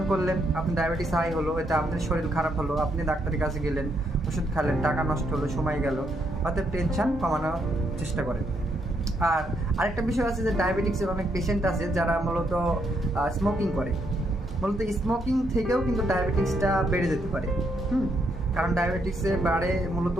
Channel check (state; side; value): normal; both; correlation 0.76